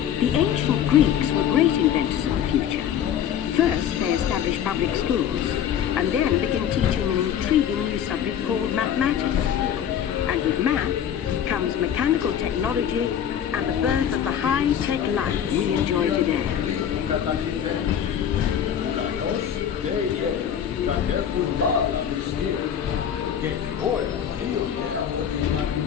The ancient Greeks were great inventors of the future. First, they established public schools, and then began teaching an intriguing new subject called mathematics. And with math comes mechanical technology and the birth of the high-tech life we enjoy today.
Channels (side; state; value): right; quieter; 9.3 dB